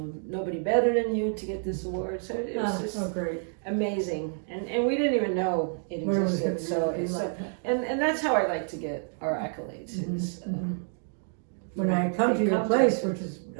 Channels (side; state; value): left; silent; digital silence